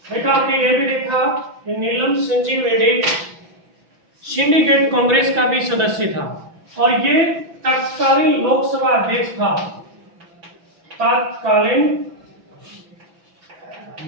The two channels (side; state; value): left; late; 5.9 ms